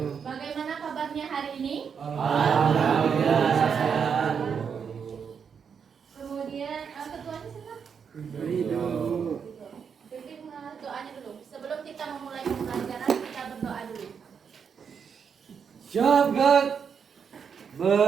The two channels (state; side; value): quieter; left; 6.7 dB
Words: Bagaimana kabarnya hari ini? Alhamdulillah sehat. Kemudian ketuanya siapa? Pimpin doanya dulu. Sebelum kita memulai pembelajaran, kita berdoa dulu. Syabat